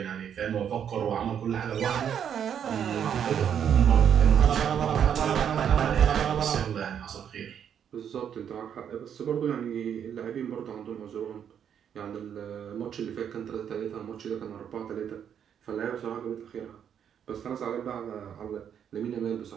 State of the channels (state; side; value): quieter; left; 8.6 dB